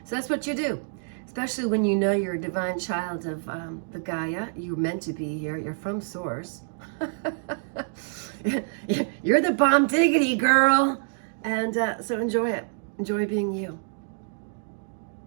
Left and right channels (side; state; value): left; silent; digital silence